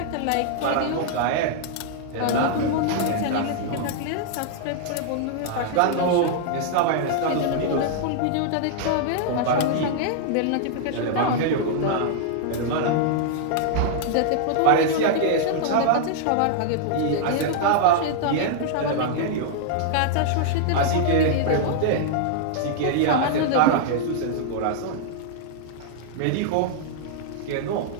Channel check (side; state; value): both; different; correlation -0.01